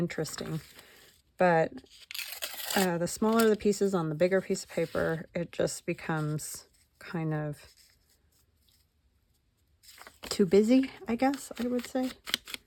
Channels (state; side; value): identical; both; correlation 1.00